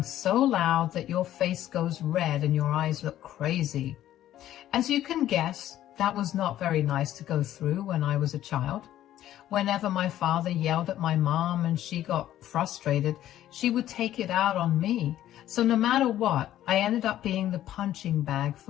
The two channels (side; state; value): right; quieter; 12.7 dB